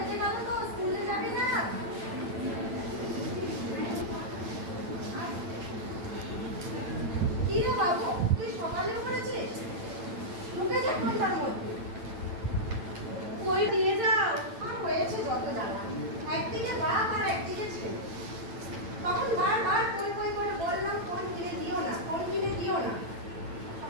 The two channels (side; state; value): left; late; 8.9 ms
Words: গেল তো, স্কুলে যাবি না? কি রে বাবু, তুই সকালে পড়েছিস? ঢুকে যা ফোনটার মধ্যে। কই দিয়ে যাও, আর হয়েছে যত জ্বালা। একদিকে বাপ আর একদিকে ছেলে। তখন বারবার কই কই করে বললাম ফোন কিনে দিও না, ফোন কিনে দিও না।